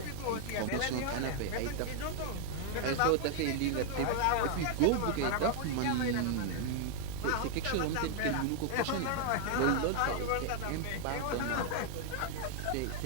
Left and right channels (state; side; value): different; both; correlation 0.00